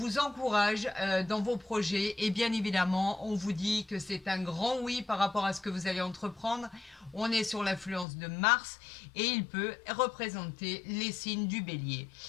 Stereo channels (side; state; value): right; drops out; at 8.1 s